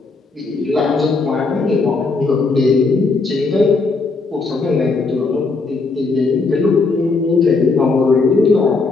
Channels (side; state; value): right; quieter; 3.9 dB